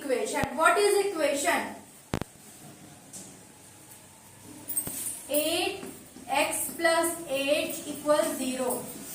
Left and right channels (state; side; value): identical; both; correlation 1.00